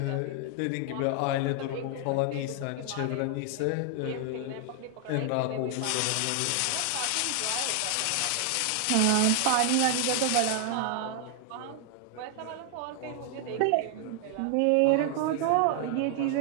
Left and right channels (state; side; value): different; both; correlation 0.00